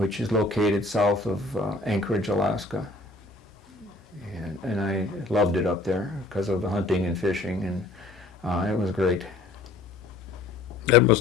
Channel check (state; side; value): quieter; right; 3.0 dB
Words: is located south of Anchorage, Alaska. And I loved it up there because of the hunting and fishing, and it was great. That